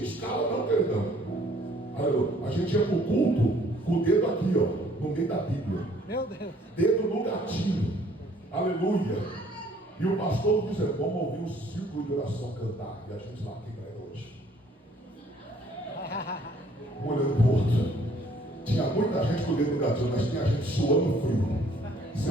escala não, perdão. Aleluia. A gente ia para o culto com o dedo aqui, ó, no meio da Bíblia. Meu Deus. Dedo no gatilho. Aleluia. E o pastor dizendo, vamos ouvir o círculo de oração cantar. E a gente lá aqui para hoje. Olhando pro outro. Tinha muita gente com o dedo no gatilho, mas tinha gente suando frio. Se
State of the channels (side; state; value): both; normal; correlation 0.60